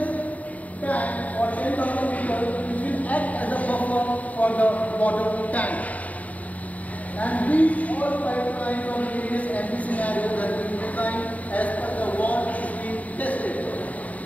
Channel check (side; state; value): right; late; 0.071 ms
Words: tank for 10,000 liters which will act as a buffer for the water tank. And these all pipelines of various MV scenarios have been designed as per the wall is being tested.